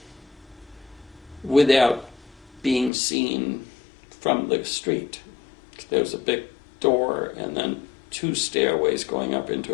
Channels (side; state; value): right; drops out; at 2.9 s